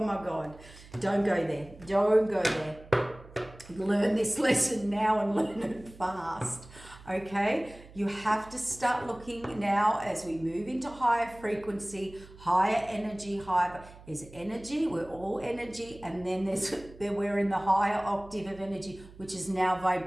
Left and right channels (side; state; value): right; noise; hum, 20 dB below the sound